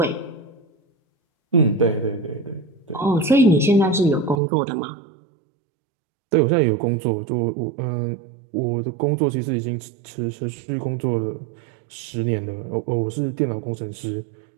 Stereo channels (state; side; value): drops out; left; at 4.4 s